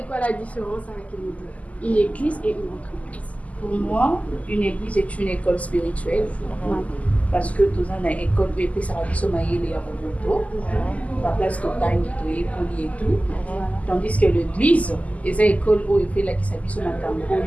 quoi la différence avec une église et une entreprise? Pour moi, une église est une école spirituelle. Parce que tous en école BP Sarabiso Maïle et Abomoto, la place totale qui est polie et tout. Tandis que l'église, c'est une école où il fait la qui s'habille sur la.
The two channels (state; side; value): late; right; 0.072 ms